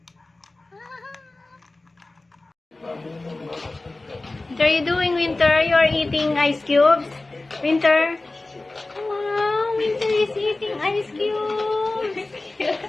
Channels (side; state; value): right; quieter; 3.1 dB